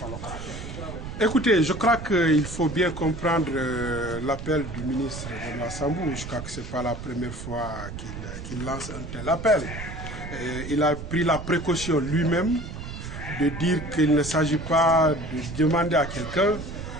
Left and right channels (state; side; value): noise; right; rumble, 9 dB below the sound